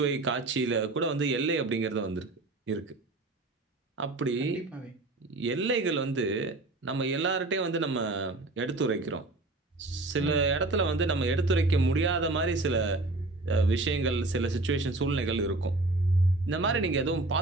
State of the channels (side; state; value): left; quieter; 3.0 dB